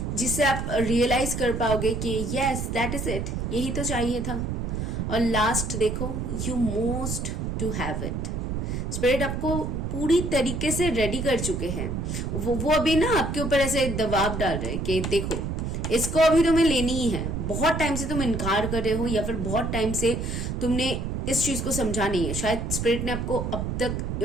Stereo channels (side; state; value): right; noise; rumble, 3 dB below the sound